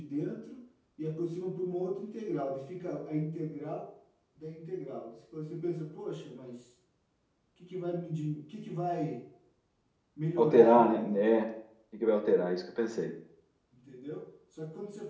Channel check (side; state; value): both; identical; correlation 1.00